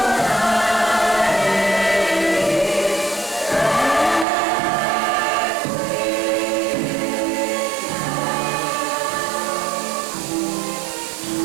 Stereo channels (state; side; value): drops out; left; at 4.2 s